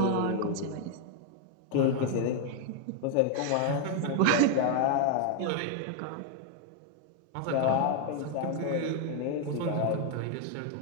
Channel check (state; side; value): different; both; correlation 0.00